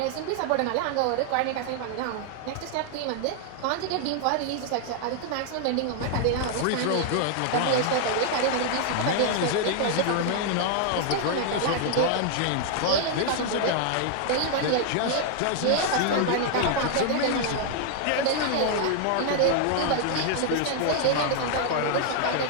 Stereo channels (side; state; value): both; different; correlation 0.00